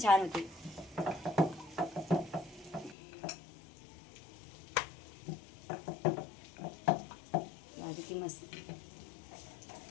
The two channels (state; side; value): drops out; right; at 3.0 s